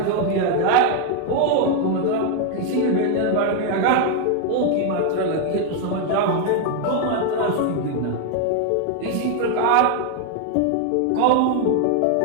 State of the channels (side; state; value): both; different; correlation 0.00